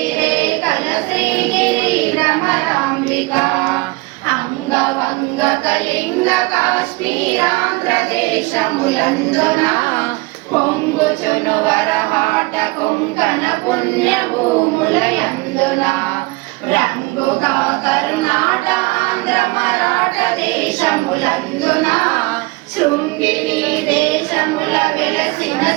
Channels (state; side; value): quieter; left; 24.5 dB